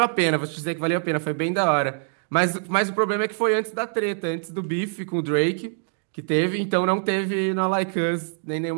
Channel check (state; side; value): silent; left; digital silence